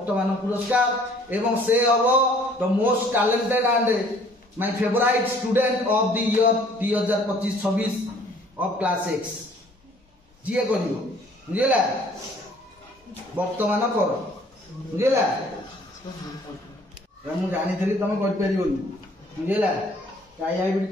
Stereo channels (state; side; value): normal; both; correlation 0.57